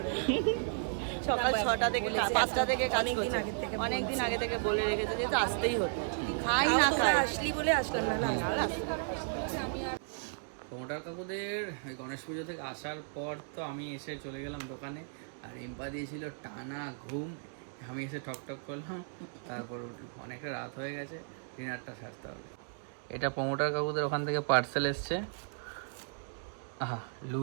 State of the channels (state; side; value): silent; left; digital silence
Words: সকাল 6টা থেকে 5টা থেকে কাজ করছি, অনেকদিন আগে থেকে বলে রেখেছে যে আসতেই হতো, খাই না খাই আসলি বলে আসলাম না। প্রমোটার কাকুদের ওই গণেশ পুজো থেকে আসার পর তো আমি এসে চলে গেলাম দোকানে, আর রিম্পা দিয়েছিল টানা ঘুম। আমি এসে ঠক করলাম, তারপর উঠলাম। অনেকটা রাত হয়ে গেছে, ডিনারটা সারতে হবে। এটা প্রমোটার কাকুদের ওখান থেকে পার্সেল এসছে। আহা,